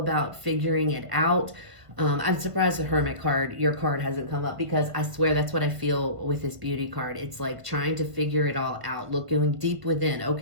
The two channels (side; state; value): left; late; 1.5 ms